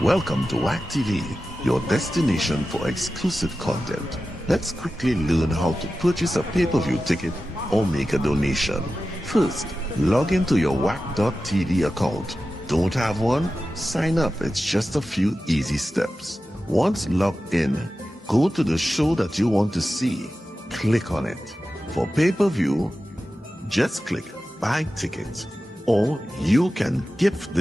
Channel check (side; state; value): both; normal; correlation 0.93